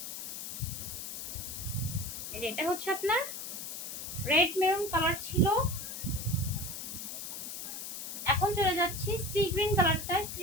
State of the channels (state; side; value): noise; left; hiss, 7 dB below the sound